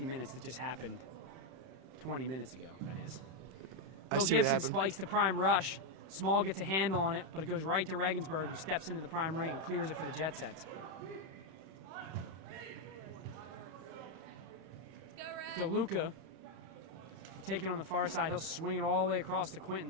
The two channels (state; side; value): late; left; 31 ms